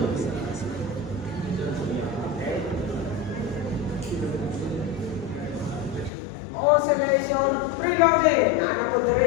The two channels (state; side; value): drops out; right; at 6.1 s